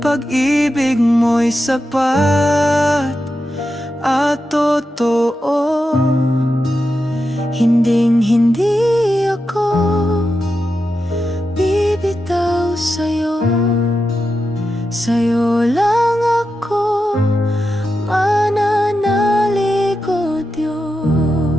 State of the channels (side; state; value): both; normal; correlation 0.89